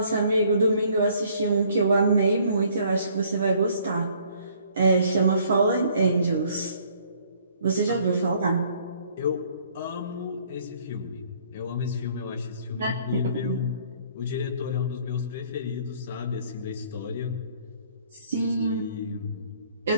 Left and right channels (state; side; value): inverted; both; correlation -0.60